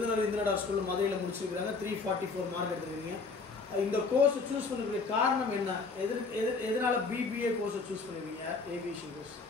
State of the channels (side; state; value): right; quieter; 4.2 dB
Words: இந்திரா ஸ்கூலில் மதுரையில் முடிச்சிருக்கிறாங்க. 344 மார்க் எடுத்துருக்கீங்க. இந்த கோர்ஸ் சூஸ் பண்ணக்கூடிய காரணம் என்ன? எதனால பிபிஏ கோர்ஸை சூஸ் பண்ணுவீங்க? Aviation course.